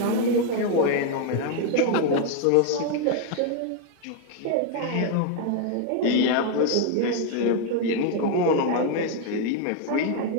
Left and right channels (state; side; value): different; both; correlation 0.00